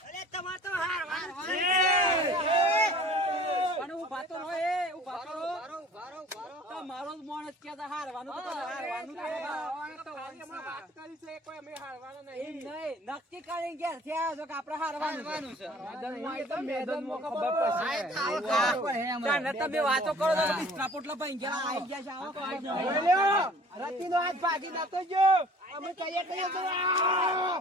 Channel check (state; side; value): normal; both; correlation 0.50